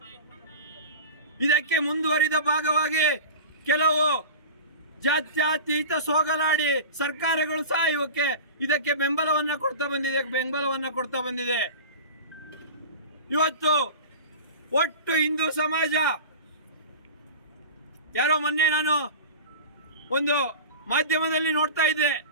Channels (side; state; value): both; inverted; correlation -0.33